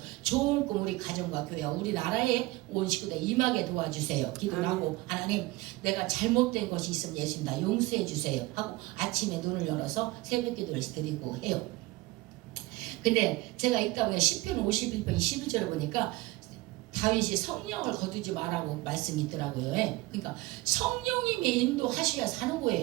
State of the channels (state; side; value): quieter; left; 20.2 dB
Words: 좋은 꿈 우리 가정과 교회와 우리나라에 온 식구들 임하게 도와주세요. 기도를 아멘. 하고 하나님 내가 잘못된 것이 있으면 예수님 나 용서해 주세요 하고 아침에 눈을 열어서 새벽 기도를 드리고 해요. 근데 제가 읽다 보니까 시편 51편 11절을 보니까 다윗이 성령을 거두지 말라고 말씀이 있더라고요. 그러니까 성령님이 인도하셔야 사는